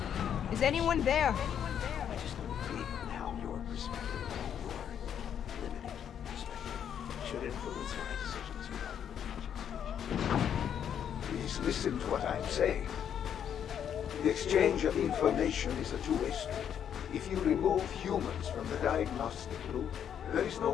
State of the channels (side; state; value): right; quieter; 8.9 dB